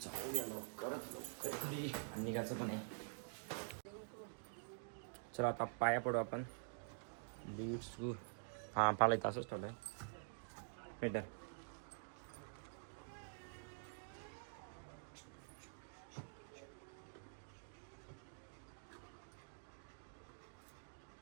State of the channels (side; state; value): left; silent; digital silence